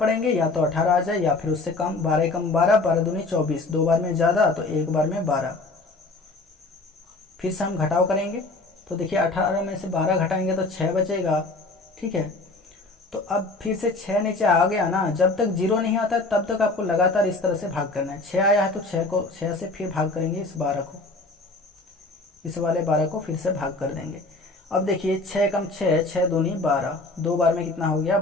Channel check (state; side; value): quieter; right; 3.3 dB